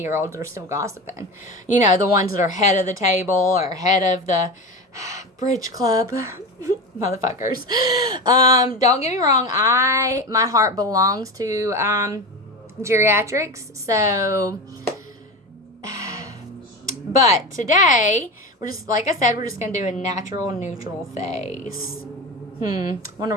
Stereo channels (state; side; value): normal; both; correlation 0.24